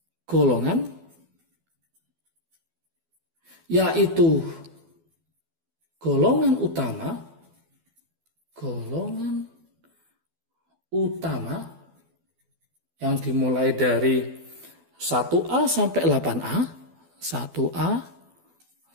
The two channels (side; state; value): left; late; 12 ms